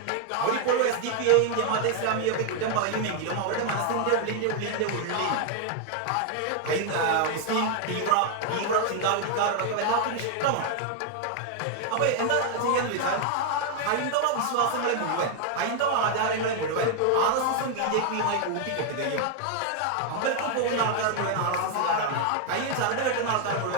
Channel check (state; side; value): different; both; correlation 0.00